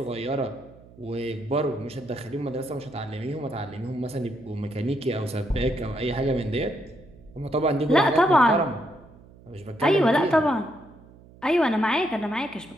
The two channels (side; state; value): right; noise; hum, 23 dB below the sound